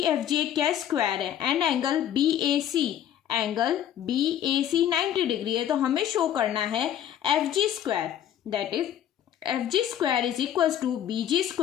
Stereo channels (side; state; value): right; quieter; 10.4 dB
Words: F G एक क्या स्क्वायर है, and angle B A C, angle B A C 90 degree है। तो हमें show करना है F G square, that is F G square is equal to B G